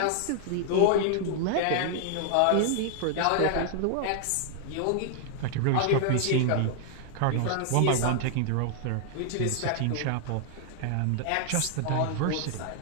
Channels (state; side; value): different; both; correlation 0.00